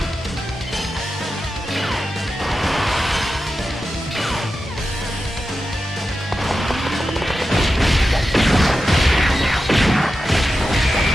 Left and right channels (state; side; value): normal; both; correlation 0.91